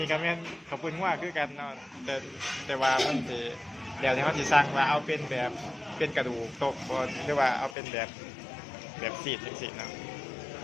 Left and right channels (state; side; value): drops out; right; at 7.8 s